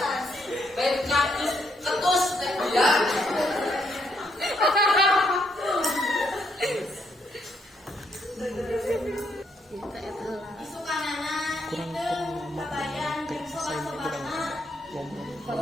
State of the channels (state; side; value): normal; both; correlation 0.74